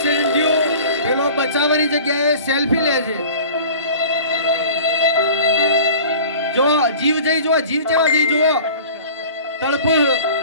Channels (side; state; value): both; inverted; correlation -0.42